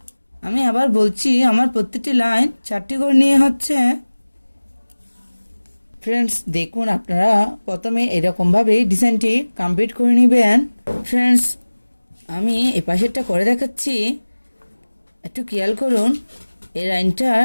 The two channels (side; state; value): both; inverted; correlation -1.00